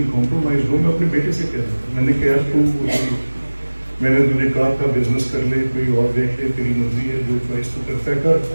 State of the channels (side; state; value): both; inverted; correlation -1.00